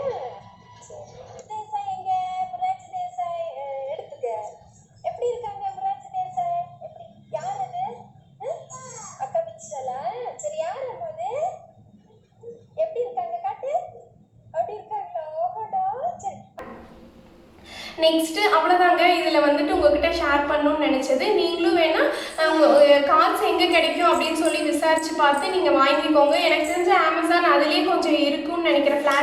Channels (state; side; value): identical; both; correlation 1.00